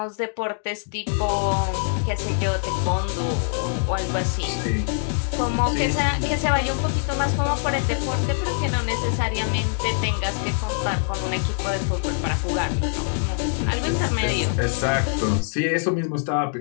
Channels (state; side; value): silent; right; digital silence